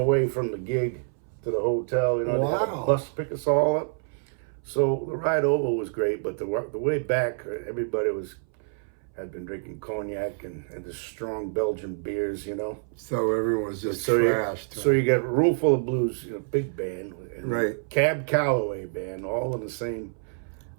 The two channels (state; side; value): silent; left; 60 dB below the other